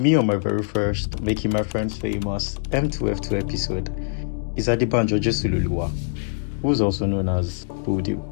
me on my very first Making My Friends Famous M2F2 episode is Adebanjo Jesuloluwa, who's also known as Boldew.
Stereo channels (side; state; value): right; silent; digital silence